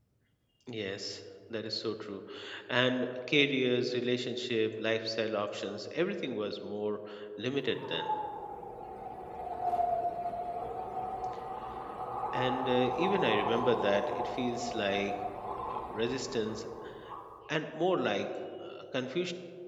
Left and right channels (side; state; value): both; identical; correlation 1.00